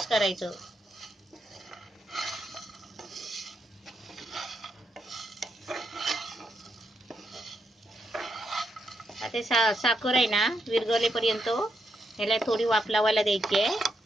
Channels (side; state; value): both; normal; correlation 0.81